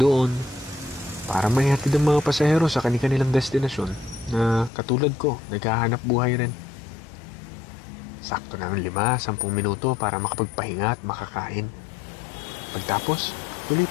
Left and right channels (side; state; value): right; drops out; at 4.7 s